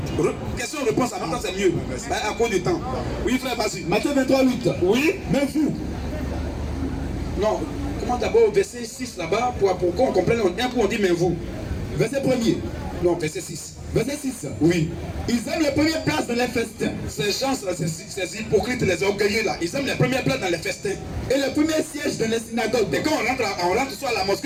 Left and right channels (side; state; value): both; identical; correlation 1.00